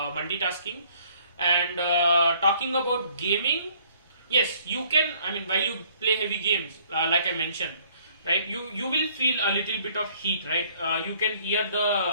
And talking about gaming, yes, you can. I mean, while you play heavy games, like I mentioned, right, you will feel a little bit of heat, right? You can hear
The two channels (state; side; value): inverted; both; correlation -0.61